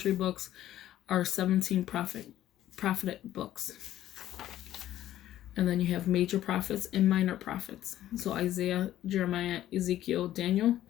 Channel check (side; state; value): right; quieter; 12.9 dB